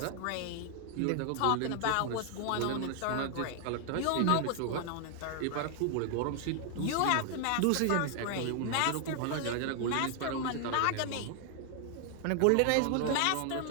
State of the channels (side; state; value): both; different; correlation 0.00